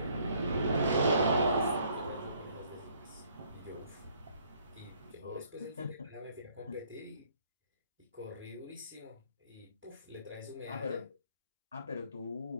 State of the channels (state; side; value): inverted; both; correlation -0.64